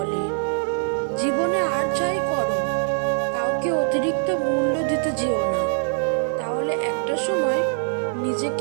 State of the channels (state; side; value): silent; left; 63 dB below the other